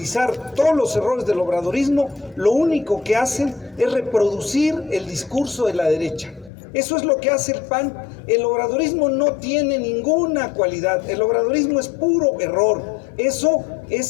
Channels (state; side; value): drops out; right; at 6.5 s